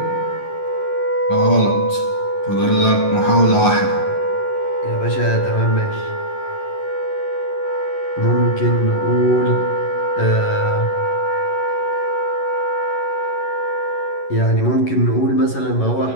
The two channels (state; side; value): late; right; 11 ms